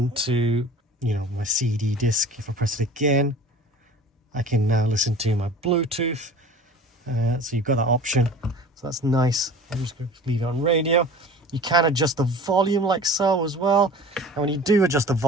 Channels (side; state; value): both; normal; correlation 0.41